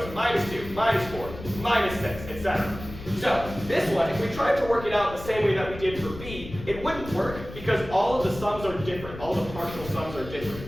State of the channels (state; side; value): noise; left; rumble, 12 dB below the sound